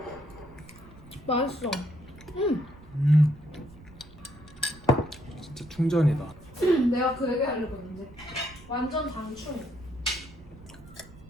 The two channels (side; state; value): right; noise; rumble, 20 dB below the sound